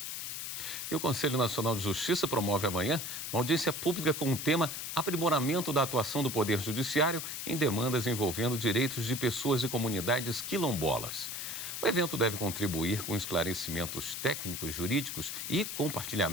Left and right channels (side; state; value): left; noise; hiss, 5 dB below the sound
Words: E o Conselho Nacional de Justiça promove amanhã uma audiência pública com o tema Aprimoramento da atuação do Poder Judiciário em demandas envolvendo direitos de pessoas e comunidades quilombolas. O evento deve contribuir com esclarecimentos técnicos, jurídicos e